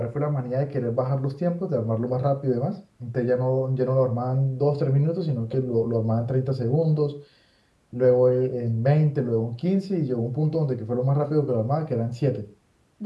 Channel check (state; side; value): identical; both; correlation 1.00